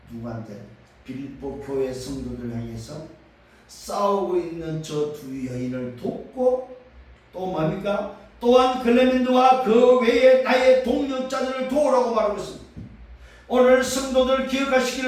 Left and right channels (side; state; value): both; identical; correlation 1.00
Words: 누구한테? 빌립보 교회 성도들 향해서 싸우고 있는 저 두 여인을 돕고 또 뭡니까? 또한 클레멘드와 그 외에 나의 동료자들을 도우라고 말하고 있습니다. 오늘 성도들